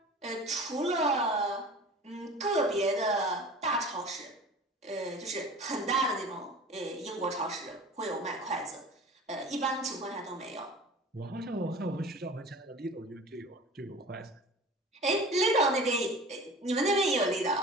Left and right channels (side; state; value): both; normal; correlation 0.39